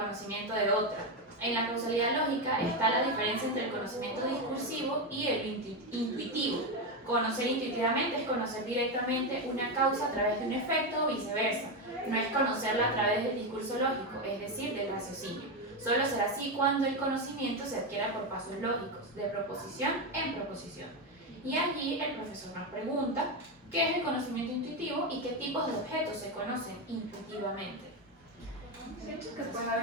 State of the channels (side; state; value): both; normal; correlation 0.10